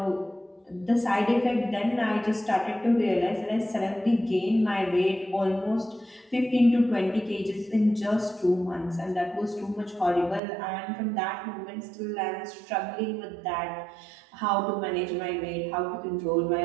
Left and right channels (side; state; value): left; drops out; at 10.4 s